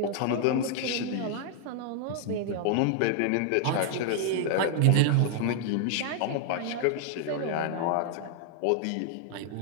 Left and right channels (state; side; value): different; both; correlation 0.00